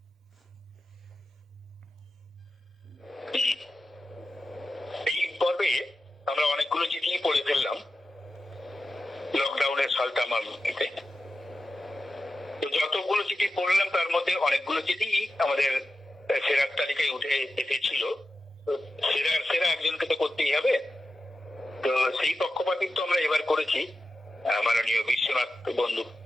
এই পর্বে আমরা অনেকগুলো চিঠি পড়ে ফেললাম লকডাউনের সালতামামিতে। তো যতগুলো চিঠি পড়লাম তার মধ্যে অনেকগুলো চিঠি আমাদের সেরার তালিকায় উঠে এসেছিল। সেরা একজনকে তো করতেই হবে। তো সেই পক্ষপাতিত্ব আমরা এবার করেছি। মাননীয় বিশ্বনাথ বন্ধু,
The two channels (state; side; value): normal; both; correlation 0.92